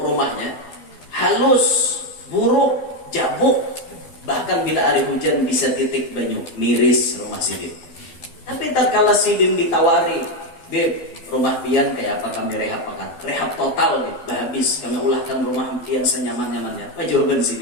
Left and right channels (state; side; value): late; right; 12 ms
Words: halus, buruk, jabuk. Bahkan bila hari hujan bisa titik banyu, miris rumah Sidin. Tapi tatkala Sidin ditawari, Beb, rumah pian kayak apa kami rehab akan? Rehab total nih, habis kami ulahkan rumah pian senyaman-nyamannya. Apa jawaban